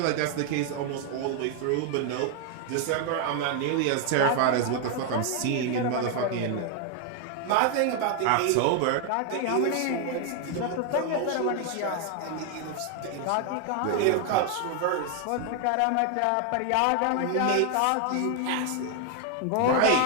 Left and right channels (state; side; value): different; both; correlation 0.00